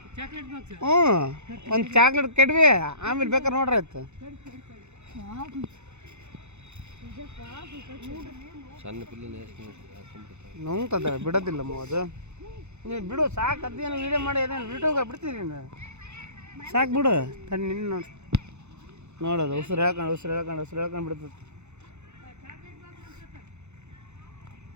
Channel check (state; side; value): late; left; 0.82 ms